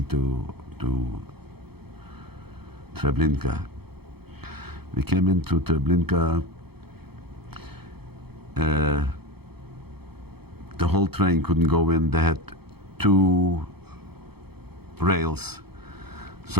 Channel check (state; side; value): late; left; 0.96 ms